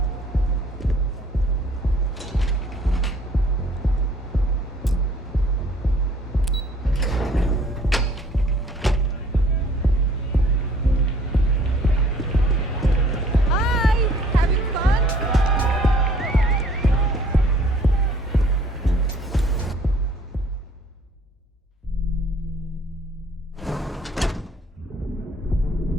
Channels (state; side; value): normal; both; correlation 0.57